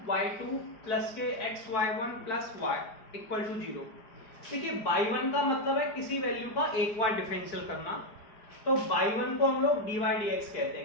y2 plus के xy1 plus y equal to 0। देखिए y1 का मतलब है किसी वैल्यू का एक बार डिफरेंशियल करना, तो y1 को हम लोग dy dx कहते हैं।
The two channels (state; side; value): late; right; 4.9 ms